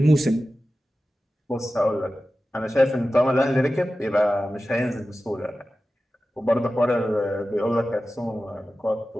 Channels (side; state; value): both; normal; correlation 0.94